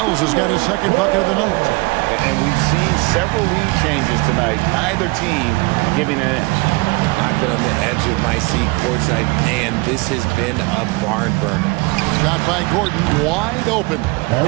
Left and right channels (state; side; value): quieter; left; 25.7 dB